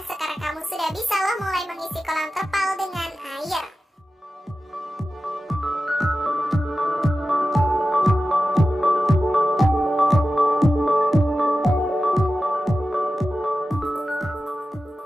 mulai mengisi kolam terpal dengan air.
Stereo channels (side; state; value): both; normal; correlation 0.93